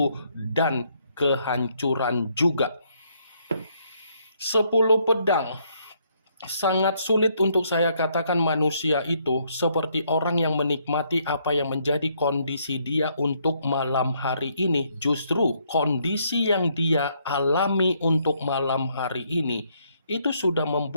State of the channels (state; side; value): inverted; both; correlation -0.71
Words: dan kehancuran juga. 10 pedang. Sangat sulit untuk saya katakan manusia itu seperti orang yang menikmati apa yang menjadi kondisi dia untuk malam hari ini. Justru kondisi yang dia alami untuk malam hari ini itu sudah